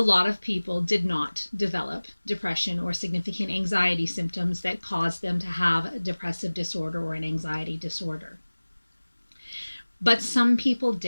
of people did not develop depression or significant anxiety symptoms that caused them to have a depressive disorder or an anxiety disorder. But some people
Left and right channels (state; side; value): inverted; both; correlation -1.00